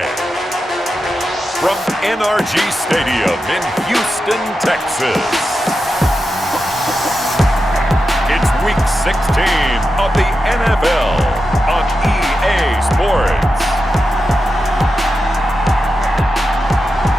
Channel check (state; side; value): normal; both; correlation 0.90